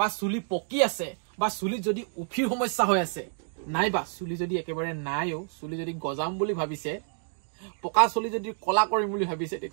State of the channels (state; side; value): silent; left; digital silence